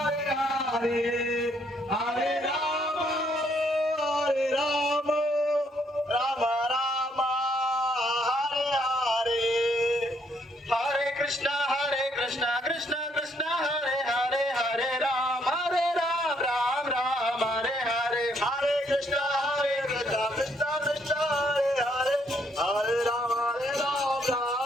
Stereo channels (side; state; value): both; normal; correlation 0.70